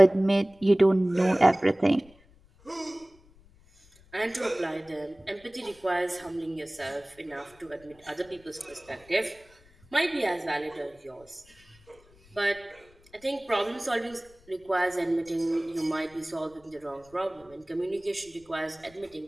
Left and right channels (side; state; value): left; noise; rumble, 28 dB below the sound